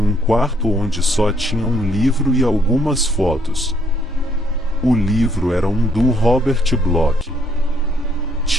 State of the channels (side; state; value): both; normal; correlation 0.68